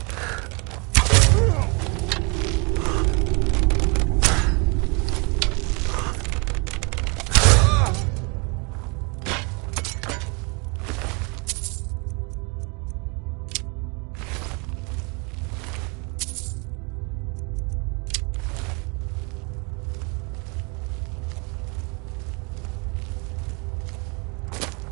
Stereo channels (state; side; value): quieter; left; 31.3 dB